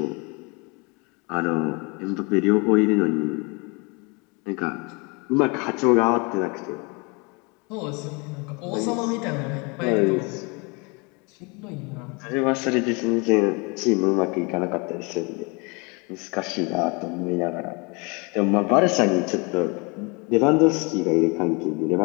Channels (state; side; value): quieter; right; 29.8 dB